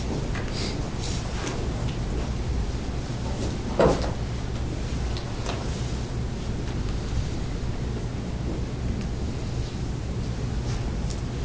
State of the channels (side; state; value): both; identical; correlation 1.00